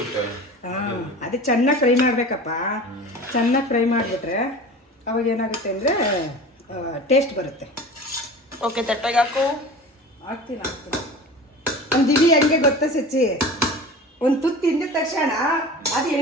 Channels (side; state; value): both; normal; correlation 0.36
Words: ಹಾಂ, ಅದೇ ಚೆನ್ನಾಗಿ ಫ್ರೈ ಮಾಡಬೇಕಪ್ಪ. ಚೆನ್ನಾಗಿ ಫ್ರೈ ಮಾಡಿಬಿಟ್ರೆ ಅವಾಗ ಏನಾಗುತ್ತೆ ಅಂದರೆ ಟೇಸ್ಟ್ ಬರುತ್ತೆ. ಓಕೆ ತಟ್ಟೆಗೆ ಹಾಕು. ಹಾಕ್ತೀನಿ. ಒಂದು ದಿವಿ ಹೆಂಗೆ ಗೊತ್ತಾ ಸಚ್ಚಿ, ಒಂದು ತುತ್ತು ತಿಂದ ತಕ್ಷಣ ಅದು